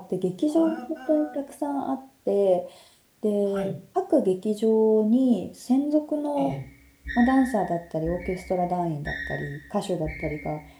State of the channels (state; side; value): identical; both; correlation 1.00